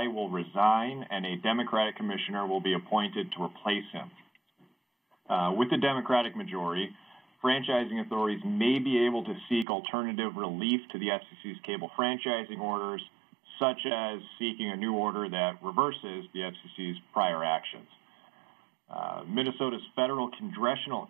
will resign and a Democratic commissioner will be appointed to replace him. With the Democratic majority, franchising authorities may be able to seek alternative relief to the FCC's cable franchising orders, such as seeking a new order that reverses the FCC's prior actions. Minnesota's federal congressional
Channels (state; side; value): drops out; left; at 9.7 s